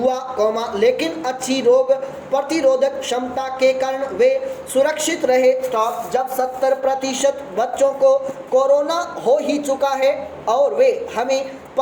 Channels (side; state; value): both; identical; correlation 1.00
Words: कॉमा लेकिन अच्छी रोग प्रतिरोधक क्षमता के कारण वे सुरक्षित रहे स्टॉप। जब 70% बच्चों को कोरोना हो ही चुका है और वे हमें